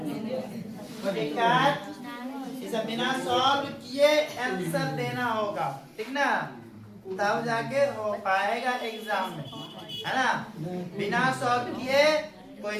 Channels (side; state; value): both; identical; correlation 1.00